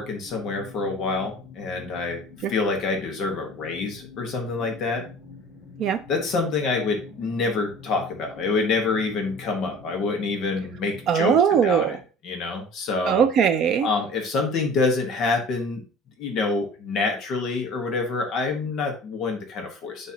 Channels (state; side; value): normal; both; correlation 0.43